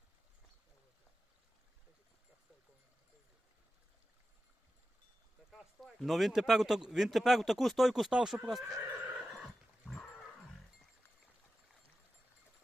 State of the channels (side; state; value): both; normal; correlation 0.92